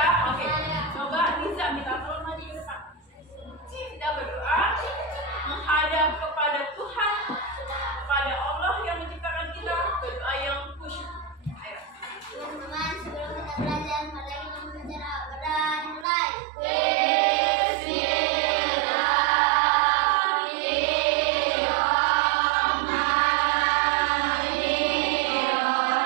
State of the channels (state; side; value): drops out; left; at 16.1 s